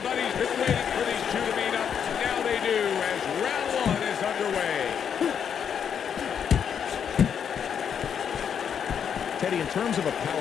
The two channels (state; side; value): quieter; right; 7.8 dB